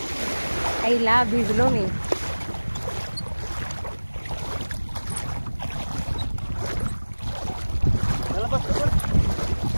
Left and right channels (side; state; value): both; inverted; correlation -1.00